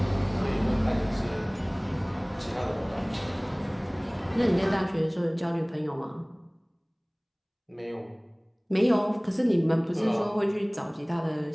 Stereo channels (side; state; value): both; identical; correlation 1.00